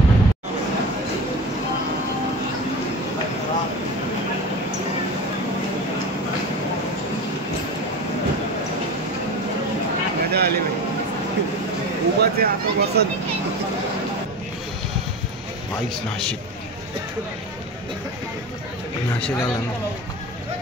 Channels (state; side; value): normal; both; correlation 0.29